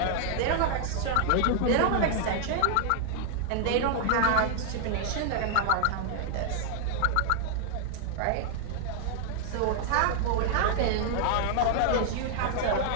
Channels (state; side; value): different; both; correlation 0.00